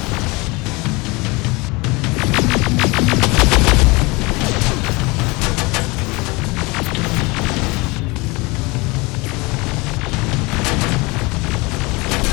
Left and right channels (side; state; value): right; quieter; 25.2 dB